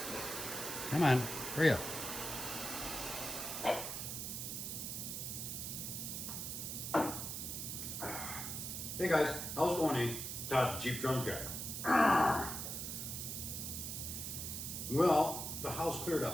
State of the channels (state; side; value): noise; right; hiss, 4 dB below the sound